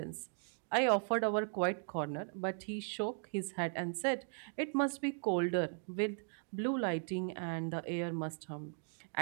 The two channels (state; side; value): silent; left; 53 dB below the other